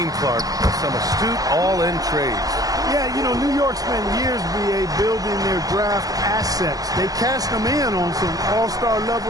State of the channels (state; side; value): late; left; 0.17 ms